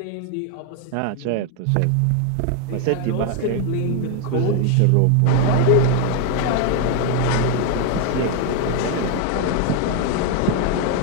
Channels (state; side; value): different; both; correlation 0.01